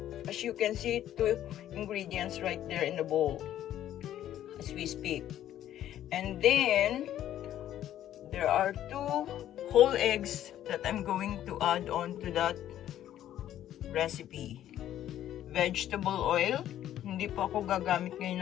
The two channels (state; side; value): quieter; right; 11.8 dB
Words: As you can see, 2 ingredients right there in the bowl as we speak. And then, there are 2 whole eggs that I'm going to add on to that recipe. Vegetable oil. Hindi po ako gagamit